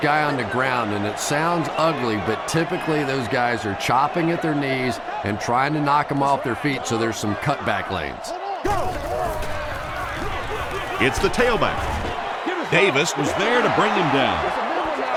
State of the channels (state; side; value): identical; both; correlation 1.00